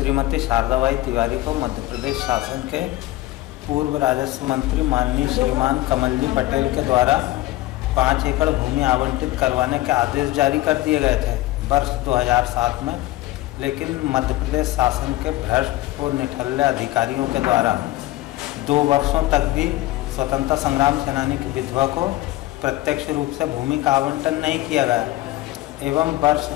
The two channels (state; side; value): quieter; right; 17.1 dB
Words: शारदाबाई तिवारी को मध्य प्रदेश शासन के पूर्व राजस्व मंत्री माननीय श्रीमान कमल जी पटेल के द्वारा 5 एकड़ भूमि आवंटित करवाने के आदेश जारी कर दिए गए थे वर्ष 2007 में। लेकिन मध्य प्रदेश शासन के भ्रष्ट और निठल्ले अधिकारियों के द्वारा 2 वर्षों तक भी स्वतंत्रता संग्राम सेनानी की विधवा को प्रत्यक्ष रूप से भूमि का आवंटन नहीं किया गया एवं वर्ष